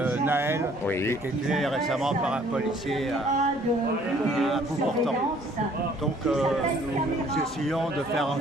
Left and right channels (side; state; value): both; normal; correlation 0.59